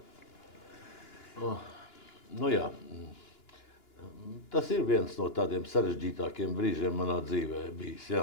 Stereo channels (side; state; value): right; late; 2.9 ms